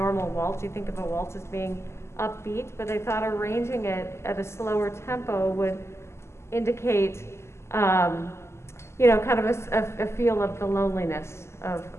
waltz. You think of a waltz as being upbeat, but they thought arranging it at a slower tempo would indicate kind of a feel of the loneliness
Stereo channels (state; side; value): late; right; 0.13 ms